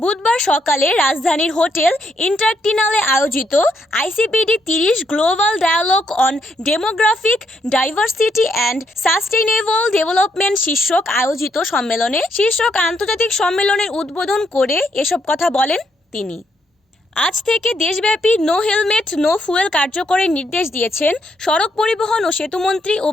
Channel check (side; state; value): both; normal; correlation 0.76